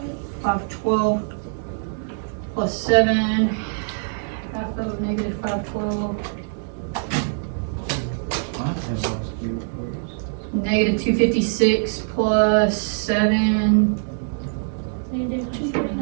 plus 7. Half of -512. -256 plus 7.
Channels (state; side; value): silent; left; digital silence